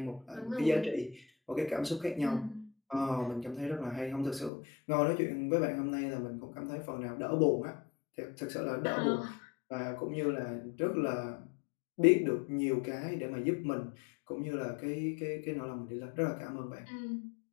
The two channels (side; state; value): right; drops out; at 4.5 s